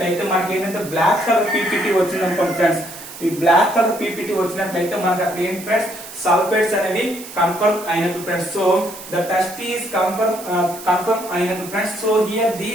మనకి ఏంటంటే black color PPT వచ్చింది అనుకోండి ఫ్రెండ్స్. ఈ బ్లాక్ కలర్ పీపీటీ వచ్చినట్లయితే మనకు అక్కడ ఏంటి ఫ్రెండ్స్, సల్ఫైడ్స్ అనేవి కన్ఫర్మ్ అయినట్టు friends. So the test is confirm అయినట్టు friends. So here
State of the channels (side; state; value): right; noise; hiss, 14 dB below the sound